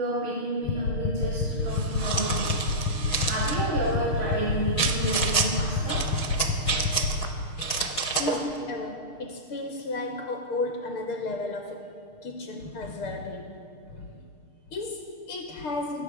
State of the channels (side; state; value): right; late; 6.3 ms